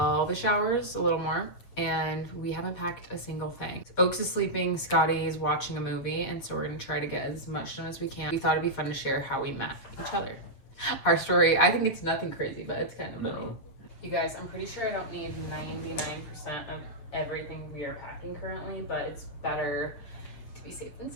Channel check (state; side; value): late; right; 8.1 ms